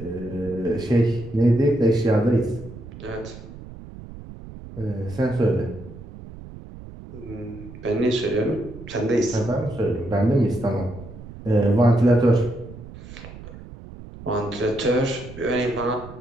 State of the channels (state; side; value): noise; right; rumble, 15 dB below the sound